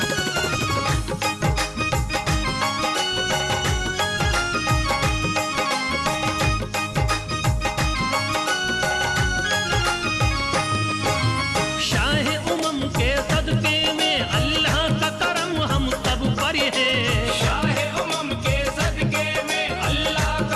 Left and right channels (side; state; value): both; identical; correlation 1.00